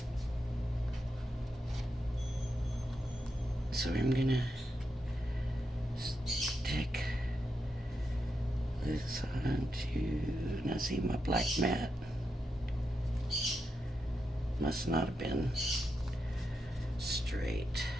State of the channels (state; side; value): normal; both; correlation 0.85